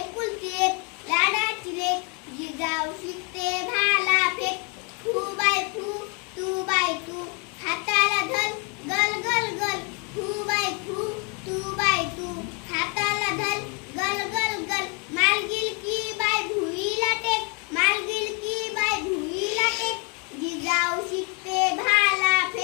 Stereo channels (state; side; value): quieter; right; 34.2 dB